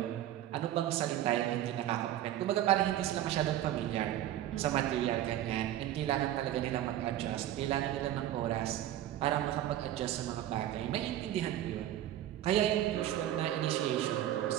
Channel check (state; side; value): quieter; left; 12.6 dB